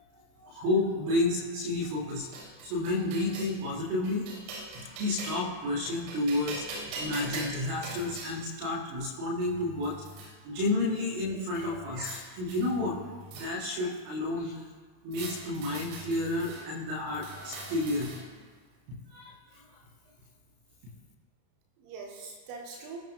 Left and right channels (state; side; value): late; left; 33 ms